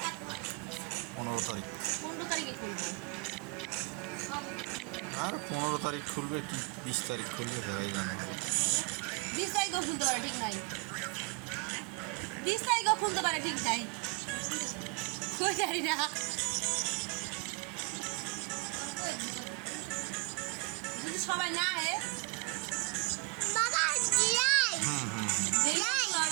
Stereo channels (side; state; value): left; quieter; 29.1 dB